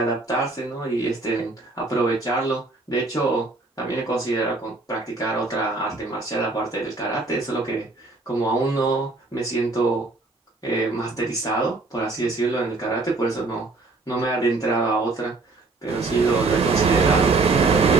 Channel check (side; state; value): left; quieter; 3.6 dB